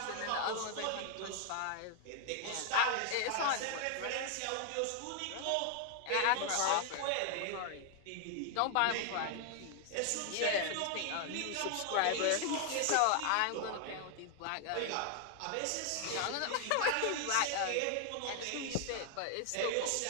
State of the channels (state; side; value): different; both; correlation 0.00